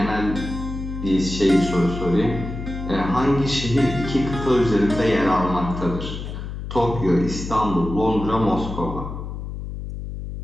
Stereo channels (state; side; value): noise; left; hum, 7 dB below the sound